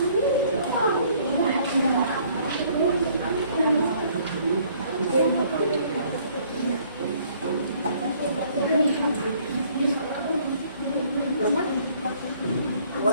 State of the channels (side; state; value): both; inverted; correlation -0.61